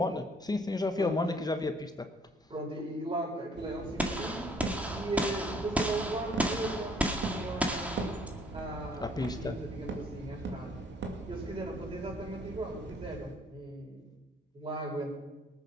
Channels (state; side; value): normal; both; correlation 0.61